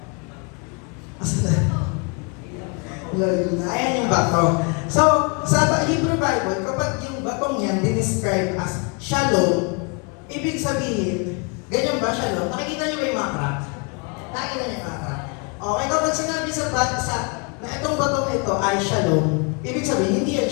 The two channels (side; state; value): right; quieter; 33.6 dB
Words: Asa na? Ayan yung bato. So, sa Hebrew Bible, kapag yung batong yan dinescribe as shalom, ibig sabihin, ganyan ba shalom? Nakikita niyo ba yung mga crack? Nakikita niyo yung mga crack? Okay, kapag sinabi sa na itong batong ito ay shalom, ibig sabihin, hindi yan